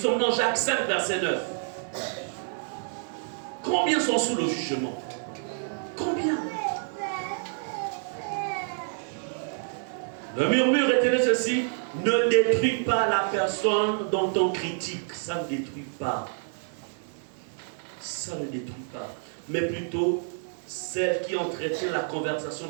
sommes dans Jacques 5, verset 9. Combien sont sous le jugement? Combien? Le murmure est ceci: ne détruis pas la personne dont on critique. Ça ne détruit pas. Ça ne détruit pas. Mais plutôt celle qui entretient la conversation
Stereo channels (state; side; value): silent; left; 59 dB below the other